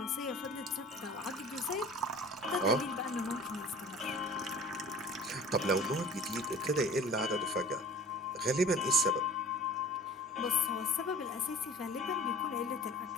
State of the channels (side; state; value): both; normal; correlation 0.45